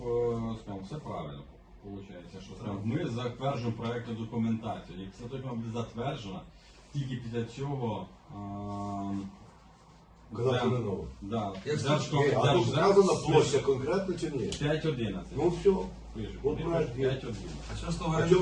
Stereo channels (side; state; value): both; identical; correlation 1.00